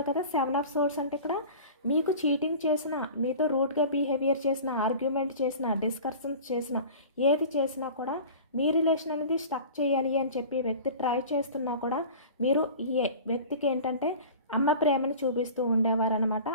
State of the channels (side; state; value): both; inverted; correlation -0.39